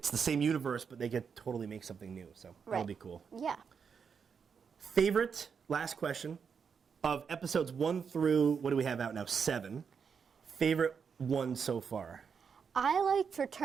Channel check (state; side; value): quieter; left; 6.4 dB